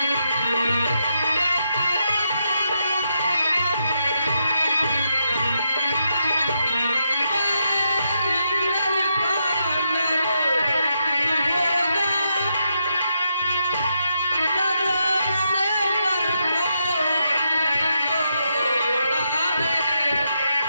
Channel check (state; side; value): inverted; both; correlation -0.82